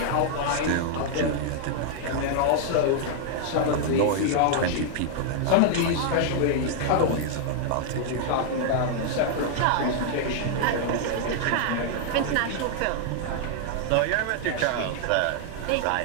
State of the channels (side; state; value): both; different; correlation -0.01